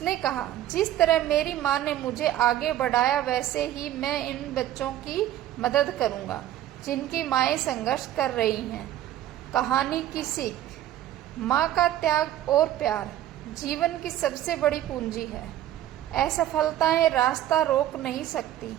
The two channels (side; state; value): left; quieter; 12.8 dB